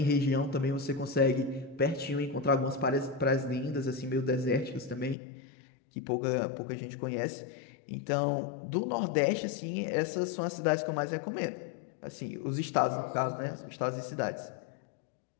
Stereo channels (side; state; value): right; drops out; at 5.2 s